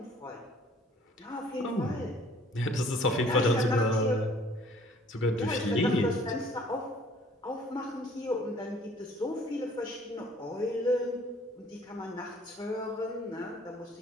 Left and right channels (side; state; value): both; normal; correlation 0.56